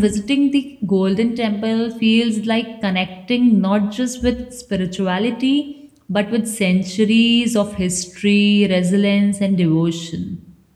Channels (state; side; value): identical; both; correlation 1.00